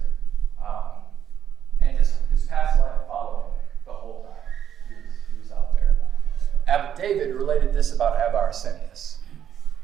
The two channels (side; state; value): left; quieter; 9.4 dB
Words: And his past life followed him the whole time. He was out there. Abbot David related this about Abba Arsenius.